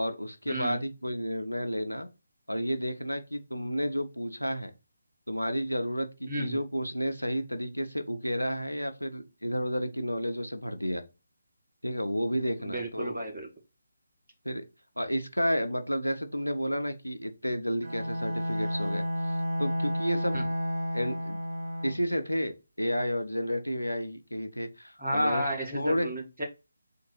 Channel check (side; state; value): both; inverted; correlation -0.95